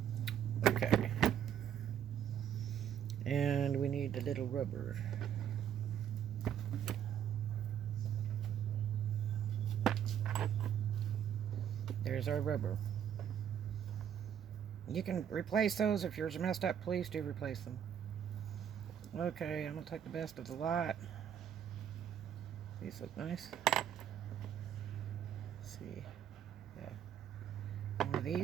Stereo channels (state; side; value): quieter; left; 9.2 dB